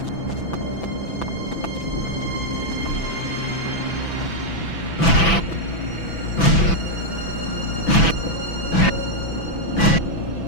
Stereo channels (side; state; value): right; late; 6.0 ms